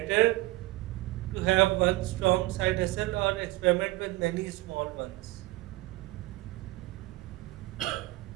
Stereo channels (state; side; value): quieter; left; 19.4 dB